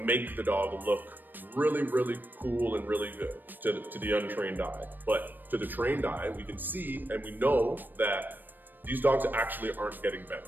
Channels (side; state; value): left; late; 0.091 ms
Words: the dog look really, really cool and really good to the untrained eye. But to the trained eye, we can see and we know that these dogs actually aren't getting